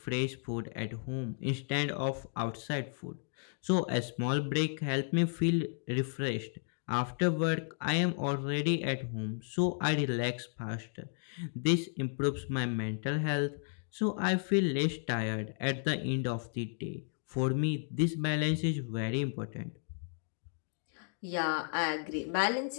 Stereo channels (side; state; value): right; silent; 55 dB below the other